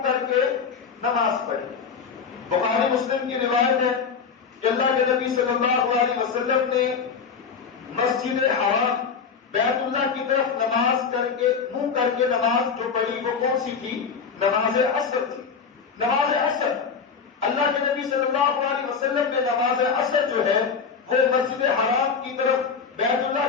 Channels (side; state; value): right; quieter; 5.9 dB